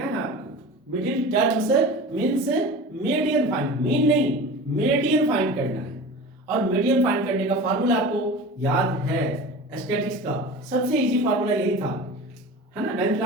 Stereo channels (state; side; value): normal; both; correlation 0.35